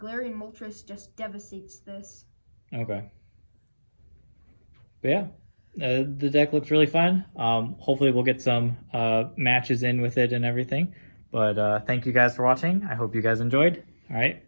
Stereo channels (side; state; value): both; inverted; correlation -1.00